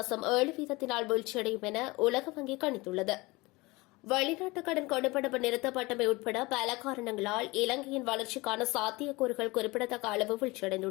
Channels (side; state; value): right; quieter; 22.9 dB